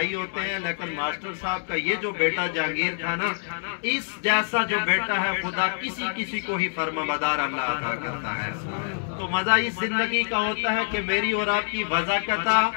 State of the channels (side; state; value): right; silent; 61 dB below the other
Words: ہوتے ہیں لیکن ماسٹر صاحب کا یہ جو بیٹا جہانگیر تھا نا، اس جیسا جو بیٹا ہے خدا کسی کو ہی فرمانبردار اللہ عطا کرتا ہے۔ تو مزہ اس زندگی کا ہوتا ہے کہ میری اور آپ کی وضاحت،